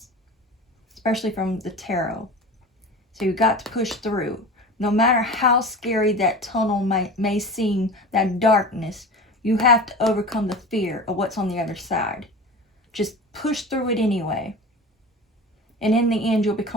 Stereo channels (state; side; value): normal; both; correlation 0.33